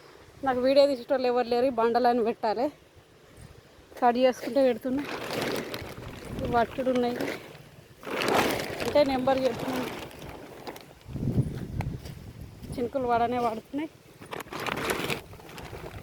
నాకు వీడియో తీసేటోళ్ళు ఎవరు లేరు. బండలని పెట్టాలి, కట్ చేసుకుంటే పెడుతున్నా. వట్టుడు ఉన్నాయి అంటే నెంబర్ చెప్తున్నాను. చినుకులు పడనే పడుతున్నాయి.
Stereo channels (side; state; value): both; identical; correlation 1.00